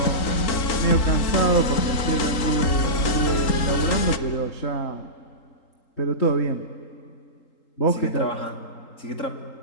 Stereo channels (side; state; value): right; late; 3.8 ms